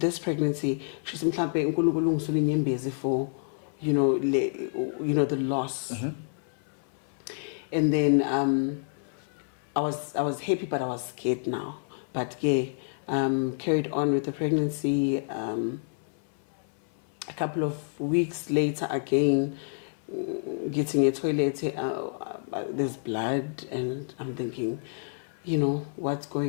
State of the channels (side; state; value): right; silent; 59 dB below the other